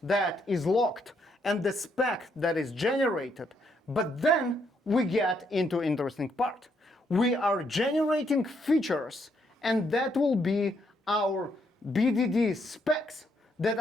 that is locked and the spec that is generated. But then we get into interesting part. We are generating features and that will be our BDD specs that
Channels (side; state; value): both; normal; correlation 0.74